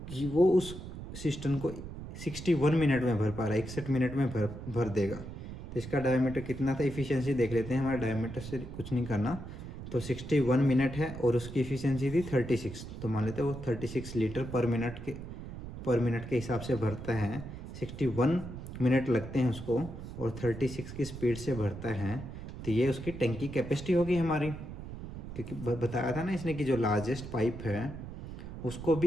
कि वो उस सिस्टम को 61 मिनट में भर पा रहा है, 61 मिनट में भर देगा। तो इसका डायमीटर कितना था, एफिशिएंसी देख लेते हैं। हमारा डायमीटर से कुछ नहीं करना। तो 61 मिनट है और उसकी एफिशिएंसी थी 36। तो मान लेते हैं वो 36 लीटर पर मिनट के हिसाब से भरता है। 61 मिनट लगते हैं उसको और 36 की स्पीड से भरता है। तो ये उसकी टैंकी कैपेसिटी होगी हमारी, क्योंकि बताया था ना इसने कि जो लार्जेस्ट पाइप है उसको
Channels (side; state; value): right; noise; rumble, 10 dB below the sound